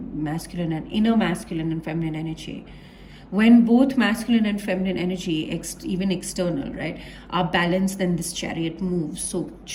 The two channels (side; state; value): both; identical; correlation 1.00